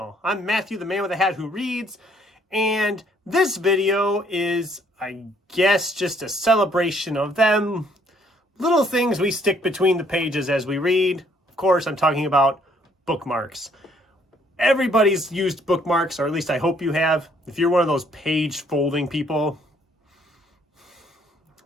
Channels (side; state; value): both; normal; correlation 0.65